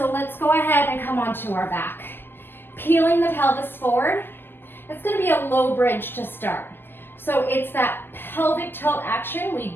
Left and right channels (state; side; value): late; right; 0.099 ms